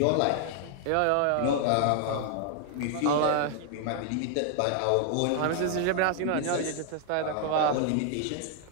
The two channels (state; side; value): different; both; correlation 0.00